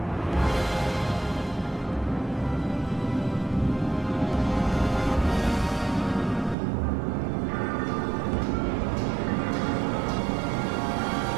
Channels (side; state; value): left; drops out; at 6.6 s